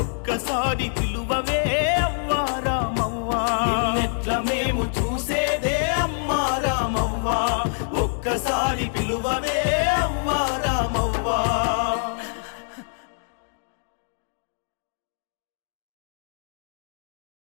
ఒక్కసారి పిలువవే అవ్వా రామవ్వ. నిన్నెట్ల మేము చూసేదే అమ్మా రామవ్వ, మరి పిలువవే అవ్వ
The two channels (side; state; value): right; silent; digital silence